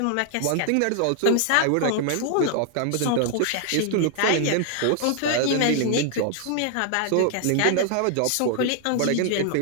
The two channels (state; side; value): different; both; correlation 0.00